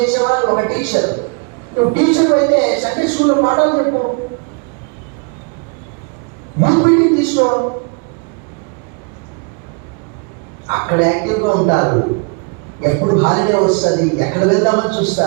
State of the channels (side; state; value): left; quieter; 35.4 dB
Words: చేసేవాళ్ళు ఒక టీచర్. నువ్వు టీచర్ అయితే సండే స్కూల్లో పాఠాలు చెప్పు, యూత్ మీటింగ్ తీసుకో, అక్కడ యాక్టివ్గా ఉంటారు. ఎప్పుడు హాలిడే వస్తుంది, ఎక్కడ వెళ్దామని